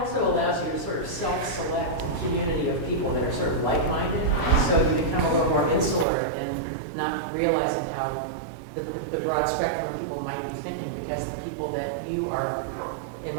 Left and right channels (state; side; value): drops out; left; at 6.1 s